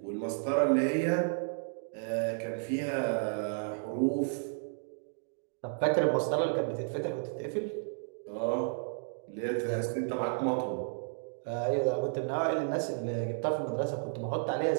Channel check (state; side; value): silent; left; digital silence